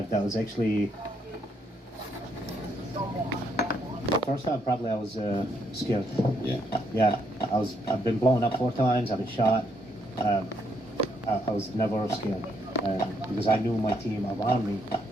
That was actually the first time probably I was scared. Yeah. Yeah, I've been blown up 4 times. I've been shot. I was never scared. because I knew my team around me.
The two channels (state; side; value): normal; both; correlation 0.74